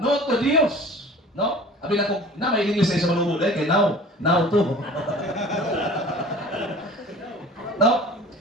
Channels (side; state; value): both; normal; correlation 0.43